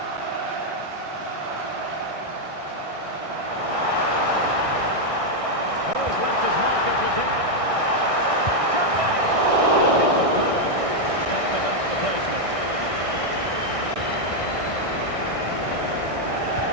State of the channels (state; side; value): late; left; 1.6 ms